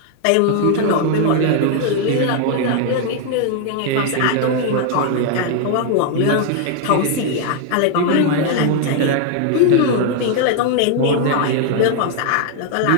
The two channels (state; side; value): different; both; correlation 0.01